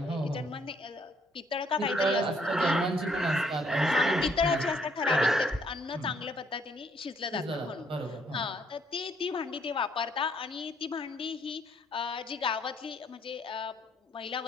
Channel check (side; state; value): both; normal; correlation 0.68